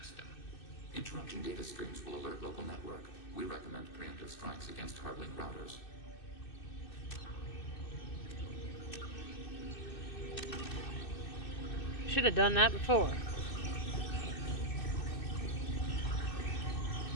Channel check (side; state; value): right; late; 2.6 ms